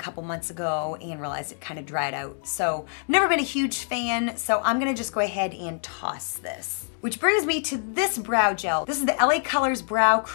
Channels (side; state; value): right; silent; 61 dB below the other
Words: months ago and realized it kind of dried out. So never been a huge fan, so I'm gonna just go ahead and toss this. Which brings me to this brow gel. This is the LA Colors Brow